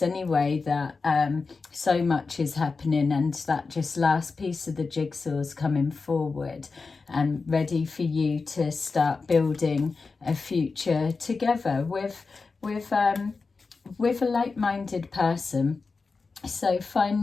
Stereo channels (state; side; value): quieter; right; 4.3 dB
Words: anyway that so much is happening, and that just last piece of the jigsaw is coming forward and ready for you to start building a future together with a like-minded person. So